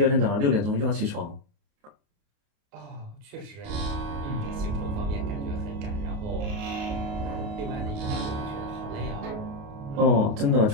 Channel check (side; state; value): left; late; 28 ms